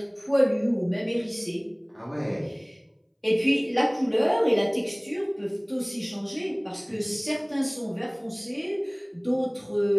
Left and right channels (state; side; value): identical; both; correlation 1.00